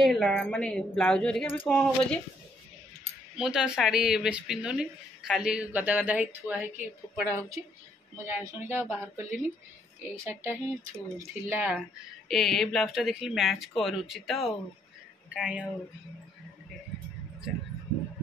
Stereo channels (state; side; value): normal; both; correlation 0.70